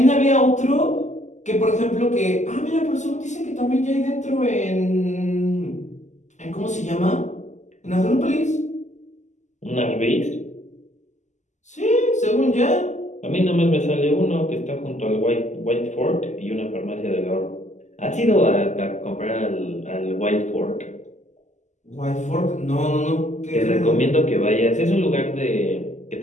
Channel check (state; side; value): late; right; 0.34 ms